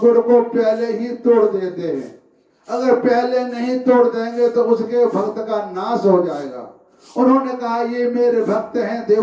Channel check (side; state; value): both; identical; correlation 1.00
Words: को पहले ही तोड़ देते हैं। अगर पहले नहीं तोड़ देंगे तो उसके भक्त का नाश हो जाएगा। उन्होंने कहा ये मेरे भक्त हैं